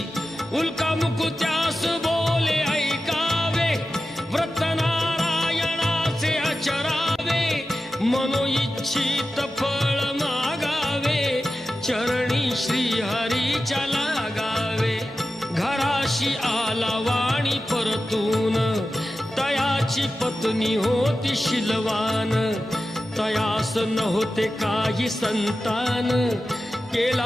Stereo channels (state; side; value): normal; both; correlation 0.93